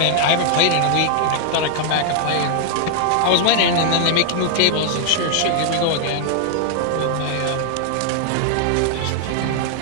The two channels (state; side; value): different; both; correlation 0.00